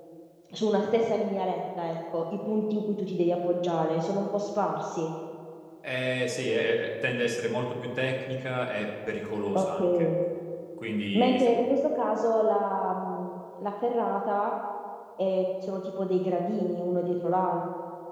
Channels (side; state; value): both; identical; correlation 1.00